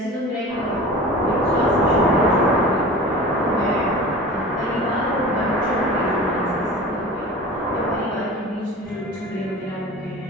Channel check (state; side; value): normal; both; correlation 0.37